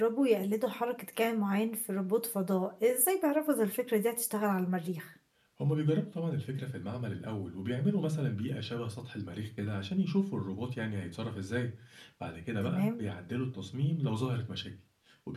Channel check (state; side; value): identical; both; correlation 1.00